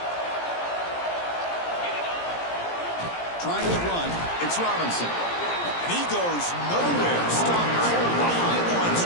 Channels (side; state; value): right; late; 17 ms